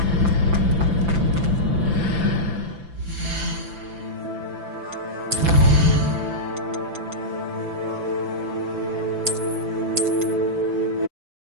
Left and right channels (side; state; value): left; late; 5.9 ms